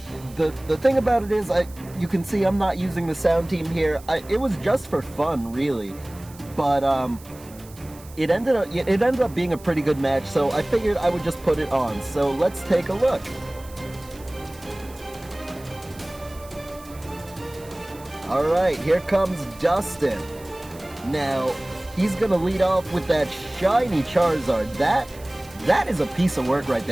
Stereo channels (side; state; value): right; noise; hiss, 22 dB below the sound